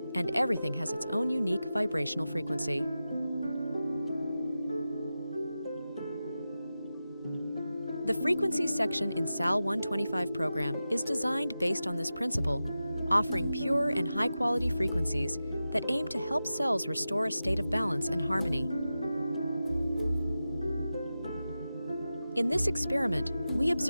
and everything has its own unique vibrational frequency. The frequencies section in SAL125 program is designed based on this principle, offering pure and high-quality frequencies that aim to help cells restore a state of balance and harmony. In this experiment, we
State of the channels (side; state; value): both; inverted; correlation -0.93